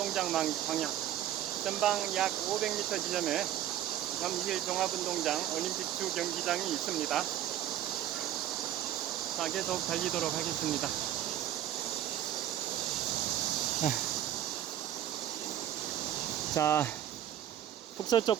방향, 전방 약 500m 지점에 잠실 종합운동장 올림픽 주 경기장이 있습니다. 자, 계속 달리도록 하겠습니다. 자,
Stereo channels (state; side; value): quieter; left; 11.7 dB